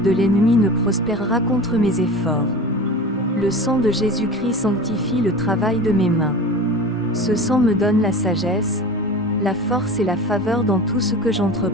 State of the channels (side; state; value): both; normal; correlation 0.34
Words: de l'ennemi ne prospérera contre mes efforts. Le sang de Jésus-Christ sanctifie le travail de mes mains. Ce sang me donne la sagesse, la force et la faveur dans tout ce que